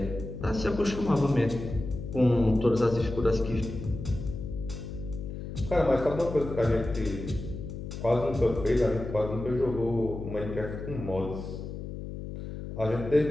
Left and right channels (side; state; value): left; noise; hum, 8 dB below the sound